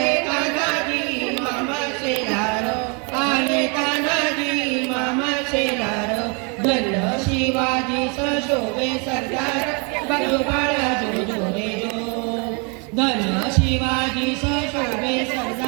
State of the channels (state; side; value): quieter; left; 34.3 dB